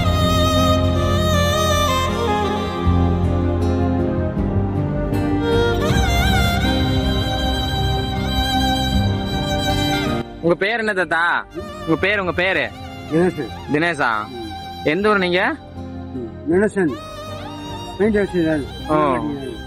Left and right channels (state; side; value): identical; both; correlation 1.00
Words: உங்க பேர் என்ன தாத்தா? உங்க பேரு தினேஷா? எந்த ஊர் நீங்க?